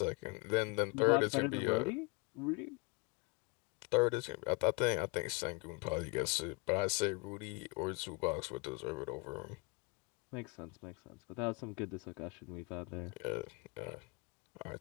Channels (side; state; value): right; quieter; 28.8 dB